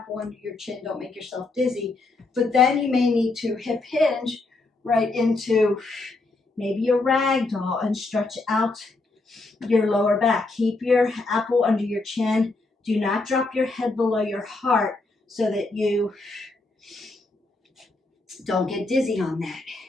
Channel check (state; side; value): quieter; right; 3.3 dB